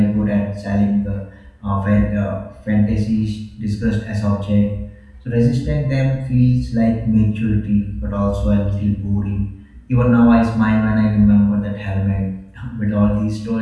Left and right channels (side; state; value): both; identical; correlation 1.00